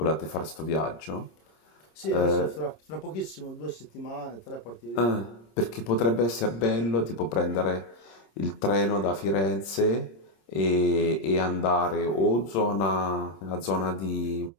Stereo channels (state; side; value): late; right; 26 ms